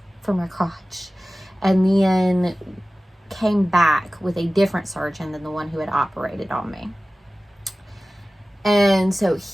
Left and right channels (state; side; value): normal; both; correlation 0.97